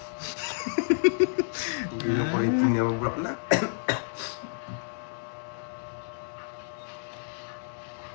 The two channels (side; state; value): right; silent; digital silence